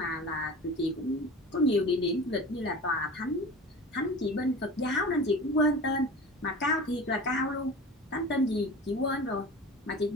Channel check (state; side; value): normal; both; correlation 0.36